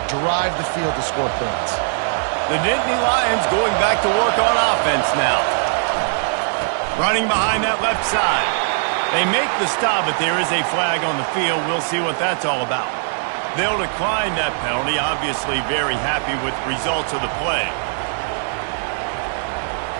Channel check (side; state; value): left; silent; digital silence